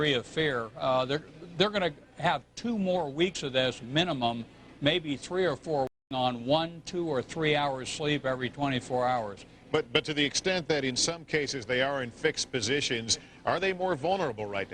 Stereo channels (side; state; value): both; identical; correlation 1.00